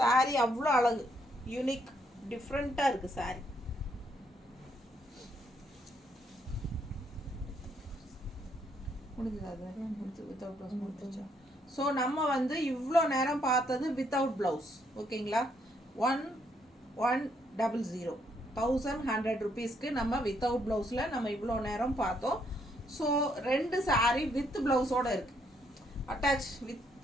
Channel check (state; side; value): normal; both; correlation 0.72